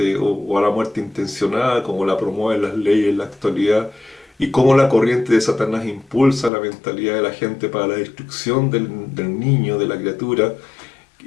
o a la muerte intencional, como la promueven las leyes en la actualidad, y cómo la corriente de Satanás impulsa la mentalidad de la gente para la destrucción del niño, de la criatura,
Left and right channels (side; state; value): right; drops out; at 6.5 s